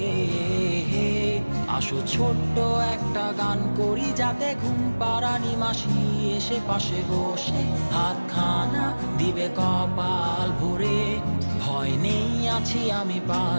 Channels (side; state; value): both; inverted; correlation -1.00